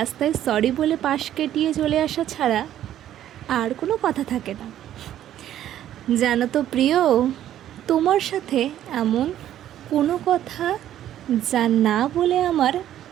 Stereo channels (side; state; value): left; quieter; 11.7 dB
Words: সরি বলে পাশ কেটিয়ে চলে আসা ছাড়া আর কোনো কথা থাকে না। জানো তো প্রিয়, তোমার সাথে এমন কোনো কথা যা না বলে আমার